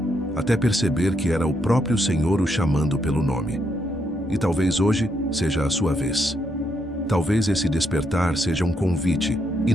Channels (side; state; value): both; normal; correlation 0.77